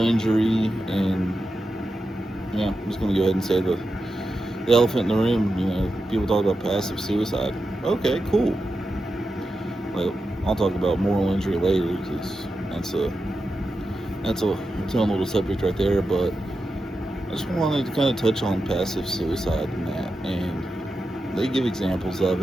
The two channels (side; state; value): both; normal; correlation 0.90